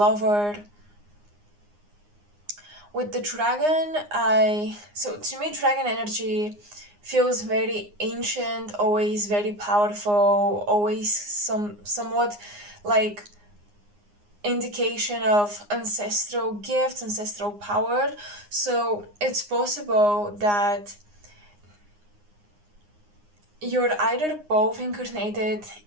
With the dragon, so to me dragon energy feels very ancient, always very powerful, always somewhat like indication of ancestral gifts, ancestral power. So it's possible that you're either both incarnated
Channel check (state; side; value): late; left; 9.7 ms